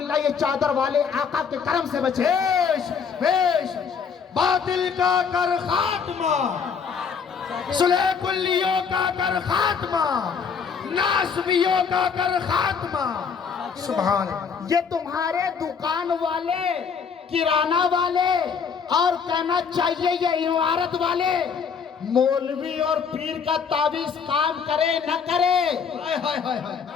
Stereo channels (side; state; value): right; quieter; 6.3 dB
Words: ये चादर वाले आका के करम से बचे। बेश बेश। बातिल का कर खात्मा, सुलह कुल्लियों का कर खात्मा, नासबियों का कर खात्मा। सुभान अल्लाह। ये तुम्हारे दुकान वाले, किराना वाले, और कहना चाहिए ये इमारत वाले, मौलवी और पीर का तावीज काम करे न करे, हाय हाय हाय हाय।